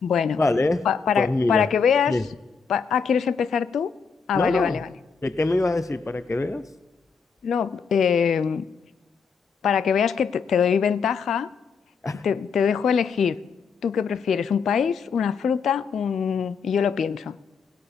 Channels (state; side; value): quieter; right; 5.7 dB